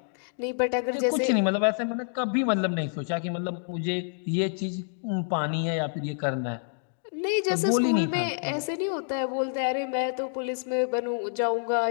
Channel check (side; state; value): right; silent; digital silence